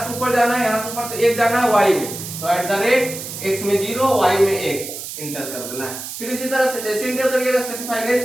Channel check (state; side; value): noise; right; hiss, 9 dB below the sound